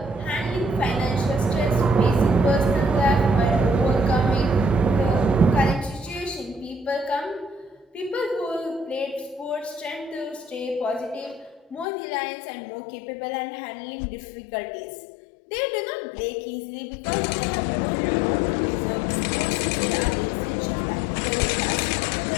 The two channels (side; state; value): right; drops out; at 11.9 s